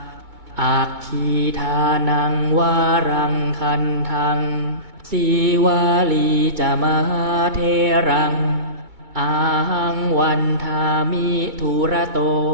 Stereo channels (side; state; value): left; late; 2.2 ms